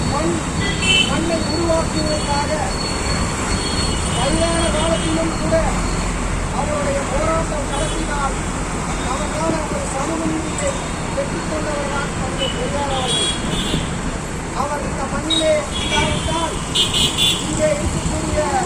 மண்ணை உருவாக்குவதற்காக வயதான காலத்திலும் கூட அவருடைய போராட்டம் நடத்தினால் நமக்கான ஒரு சமூக நீதியை பெற்றுக்கொண்டவர்தான் தந்தை பெரியார் அவர்கள். அவர் இந்த மண்ணிலே இல்லாவிட்டால் இங்கே இருக்கக்கூடிய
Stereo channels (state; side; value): identical; both; correlation 1.00